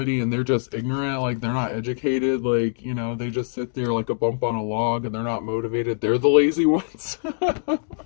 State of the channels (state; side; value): silent; right; digital silence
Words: and they're just ignorant, like they're not educated, like, you know, they just sit there like a bump on a log and they're not motivated. They're the lazy ones.